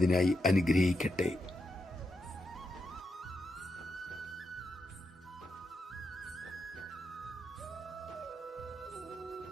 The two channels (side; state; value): both; normal; correlation 0.85